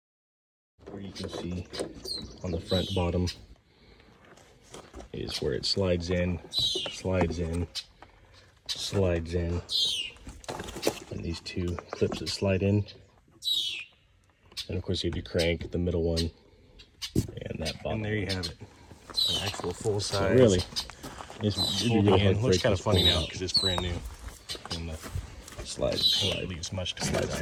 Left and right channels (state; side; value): identical; both; correlation 1.00